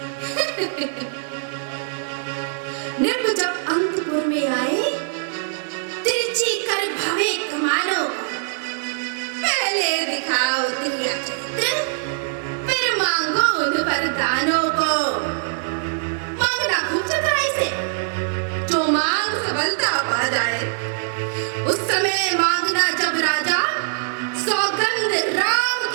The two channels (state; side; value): silent; left; digital silence